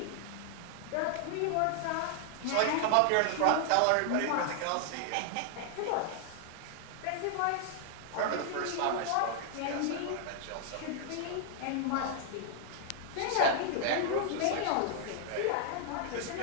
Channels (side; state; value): both; different; correlation 0.00